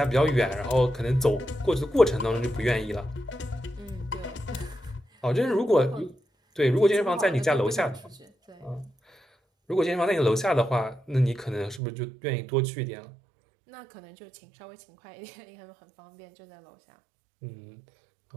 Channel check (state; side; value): drops out; left; at 11.8 s